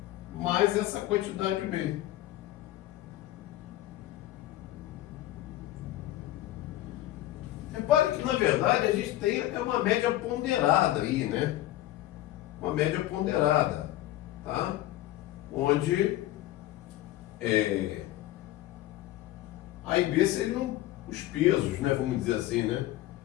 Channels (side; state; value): right; quieter; 15.1 dB